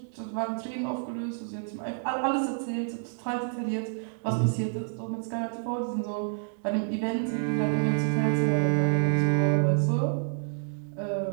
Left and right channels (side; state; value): left; silent; digital silence